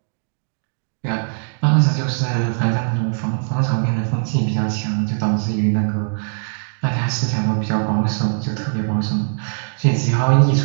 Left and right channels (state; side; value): silent; left; digital silence